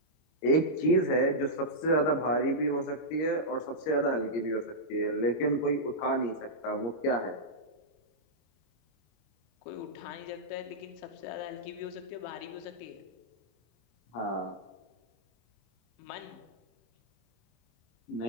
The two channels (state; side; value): late; right; 26 ms